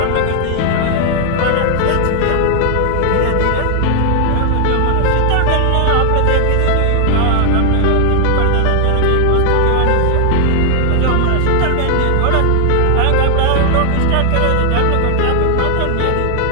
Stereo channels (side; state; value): both; different; correlation 0.00